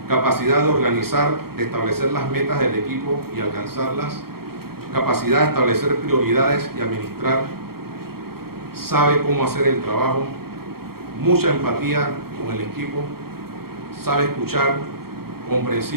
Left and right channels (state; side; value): late; left; 0.94 ms